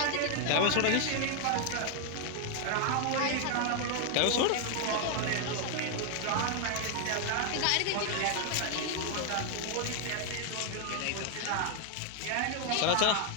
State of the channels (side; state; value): both; different; correlation 0.00